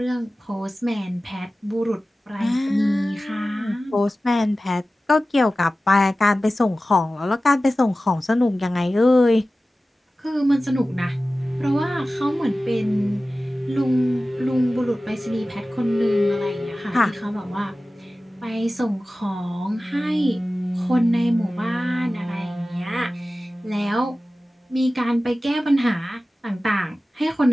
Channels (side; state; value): both; normal; correlation 0.96